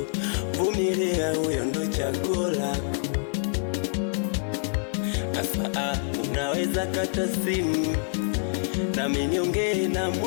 Vumilia, huyo ndo chaguo lako. Asa unaweza kata simu nami niongee na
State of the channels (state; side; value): silent; right; 59 dB below the other